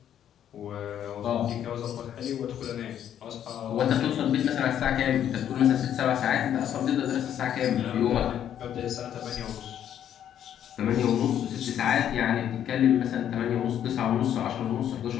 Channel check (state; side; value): quieter; right; 10.1 dB